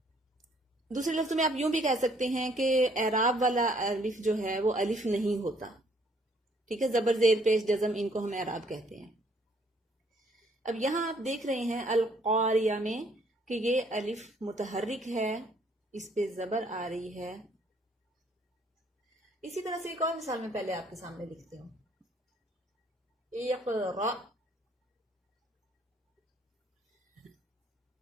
दूसरे लफ्ज़ों में आप यूं भी कह सकते हैं कि एराब वाला अलिफ जो है वो अलिफ नहीं होता। ठीक है, जबर जेर पेश जज़म, इनको हम एराब कहते हैं। अब यहां आप देख रहे हैं अल क़ारिया में कि ये अलिफ मुतहर्रिक है, इस पे जबर आ रही है। इसी तरह से एक और मिसाल में पहले आपके सामने लिखती हूं, इक़रा।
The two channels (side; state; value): both; normal; correlation 0.64